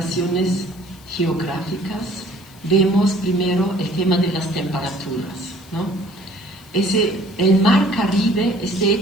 geográficas. Vemos primero el tema de las temperaturas, ¿no? El mar Caribe es de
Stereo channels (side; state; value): left; noise; hiss, 25 dB below the sound